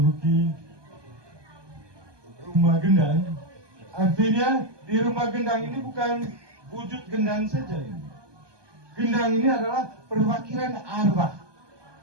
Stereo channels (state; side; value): late; left; 1.2 ms